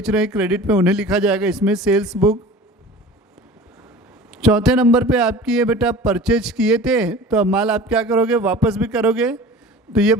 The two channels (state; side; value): normal; both; correlation 0.40